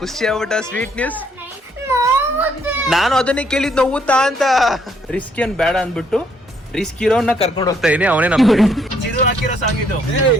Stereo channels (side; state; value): both; normal; correlation 0.69